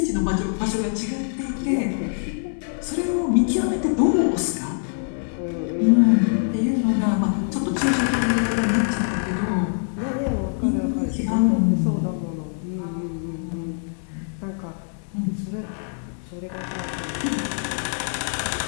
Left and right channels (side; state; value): right; silent; 63 dB below the other